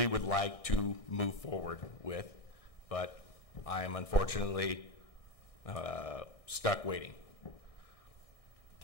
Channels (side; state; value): right; late; 1.6 ms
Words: would like to move forward with, but I am unfortunately stuck waiting.